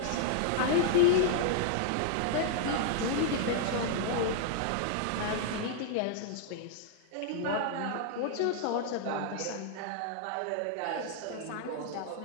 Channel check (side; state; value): both; different; correlation -0.01